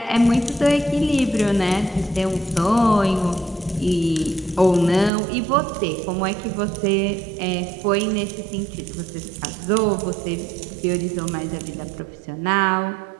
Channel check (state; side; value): drops out; left; at 5.1 s